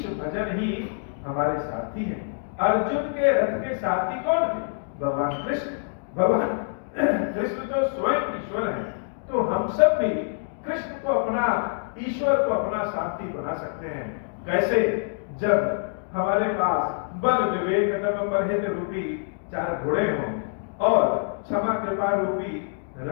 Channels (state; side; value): silent; right; 61 dB below the other